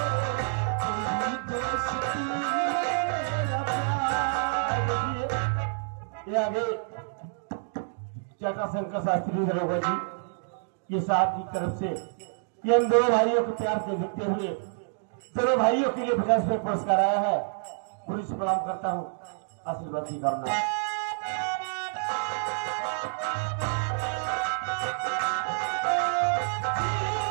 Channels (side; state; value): left; silent; digital silence